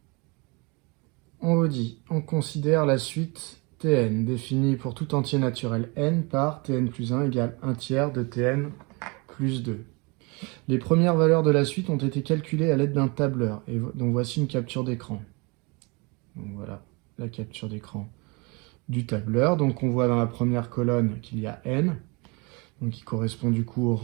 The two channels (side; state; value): left; quieter; 28.8 dB